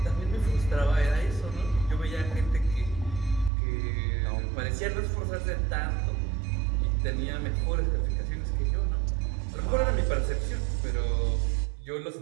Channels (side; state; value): left; drops out; at 3.5 s